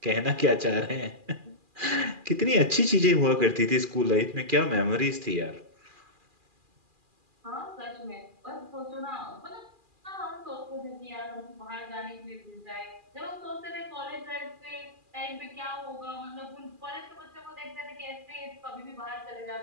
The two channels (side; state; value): left; late; 2.4 ms